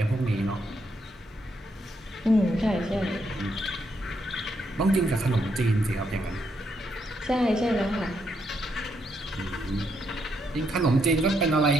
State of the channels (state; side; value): normal; both; correlation 0.77